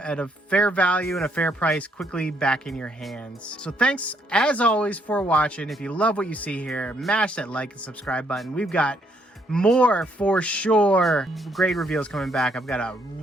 a fair value and a fair price quickly back in your hands. So thanks as always for watching. If you love what you see here, mash that like and subscribe button. We've got more for sure grade reveals coming back. I've got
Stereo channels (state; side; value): normal; both; correlation 0.71